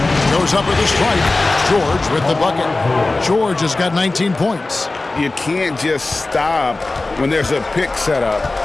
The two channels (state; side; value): quieter; right; 3.2 dB